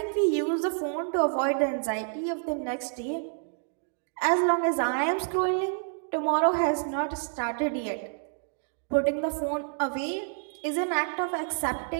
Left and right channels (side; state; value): left; silent; digital silence